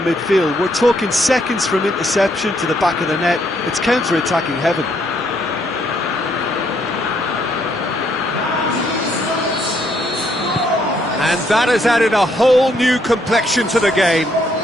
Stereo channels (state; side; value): normal; both; correlation 0.71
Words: midfield. We're talking seconds from interception to the back of the net. It's counter-attacking heaven. And that has added a whole new complexion to the game.